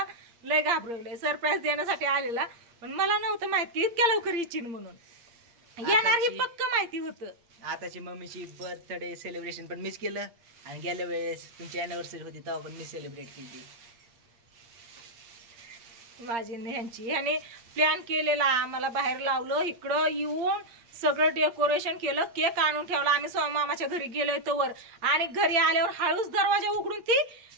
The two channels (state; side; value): late; left; 8.6 ms